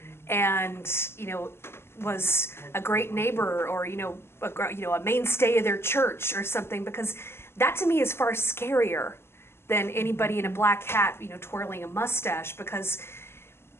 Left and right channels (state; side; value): late; right; 0.12 ms